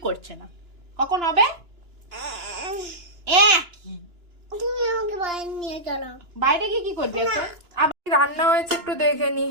করছে না। কখন হবে? তুমি আমাকে বাইরে নিয়ে চলো। বাইরে গিয়ে কি করবি এখন? আবার রান্না হয়েছে একটু দেখে নি।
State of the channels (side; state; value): left; late; 2.9 ms